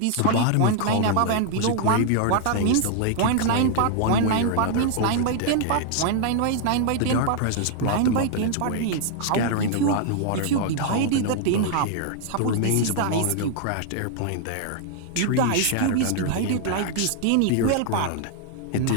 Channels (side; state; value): both; different; correlation 0.00